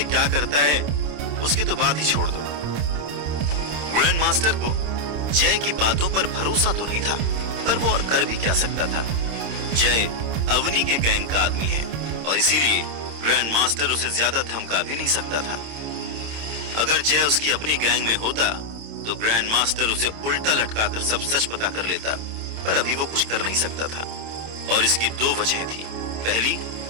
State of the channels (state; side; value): late; left; 27 ms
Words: क्या करता है, उसकी तो बात ही छोड़ दो। ग्रैंड मास्टर को जय की बातों पर भरोसा तो नहीं था, पर वो और कर भी क्या सकता था। जय अवनी के गैंग का आदमी है और इसीलिए ग्रैंड मास्टर उसे ज्यादा धमका भी नहीं सकता था। अगर जय उसकी अपनी गैंग में होता तो ग्रैंड मास्टर उसे उल्टा लटकाकर सब सच पता कर लेता, पर अभी वो कुछ कर नहीं सकता था और इसकी 2 वजह थी। पहली,